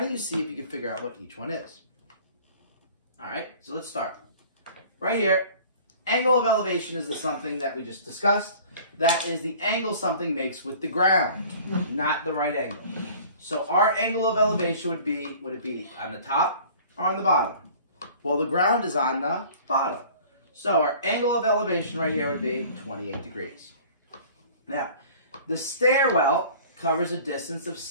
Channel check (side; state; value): both; inverted; correlation -0.47